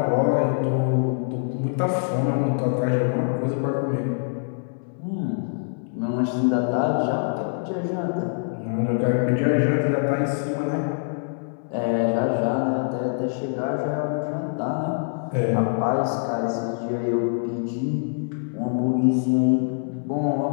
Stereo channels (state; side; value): silent; right; 62 dB below the other